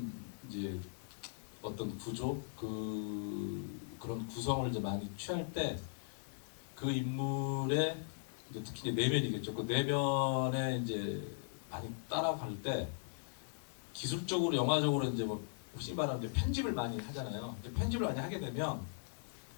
이제 어떤 구조 그런 구성을 이제 많이 취할 때 그 인물의 이제 특히 이제 내면이겠죠. 그 내면에 이제 많이 따라갈 때 기술적으로 영화적으로 이제 뭐 혹시 말하면 이제 편집을 많이 하잖아요. 이제 편집을 많이 하게 되면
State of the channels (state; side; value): silent; right; digital silence